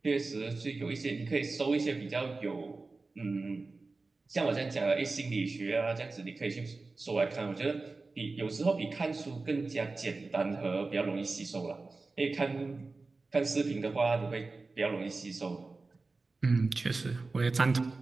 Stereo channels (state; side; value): quieter; left; 3.7 dB